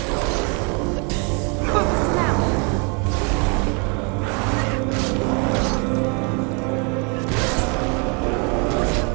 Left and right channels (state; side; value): quieter; left; 34.2 dB